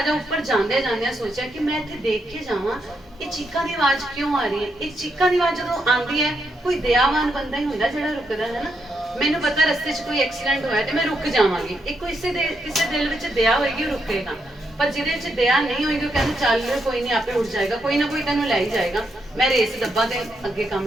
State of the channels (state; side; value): normal; both; correlation 0.80